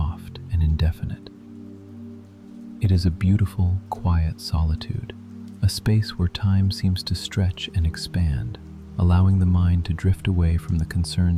and indefinite. It is a beautiful, quiet solitude, a space where time seems to stretch and expand, allowing the mind to drift away from the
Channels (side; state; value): both; identical; correlation 1.00